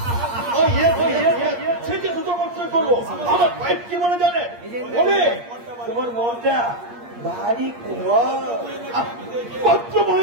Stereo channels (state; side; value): late; left; 8.5 ms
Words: সেটি দুটো বছর করবো। আমার ফাইভ কি মনে জানে? বলে তোমার মনটা ভারী পত্র